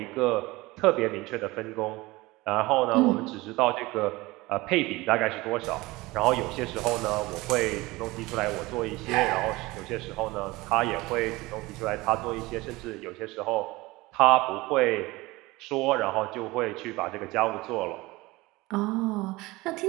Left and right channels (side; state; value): left; quieter; 21.1 dB